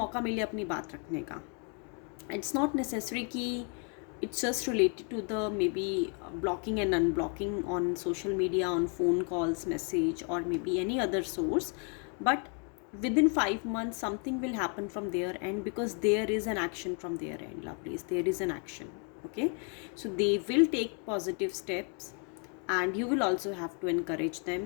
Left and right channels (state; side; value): quieter; right; 39.4 dB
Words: मिले अपनी बात रखने का। इट्स नॉट नेसेसरी कि it's just related to the maybe blocking and unblocking on social media, on phone calls, message, or maybe any other source. But within 5 months something will happen from their end, because there is an action from their end, lovelies. There is an action, okay. So they will take positive steps and you will also have to encourage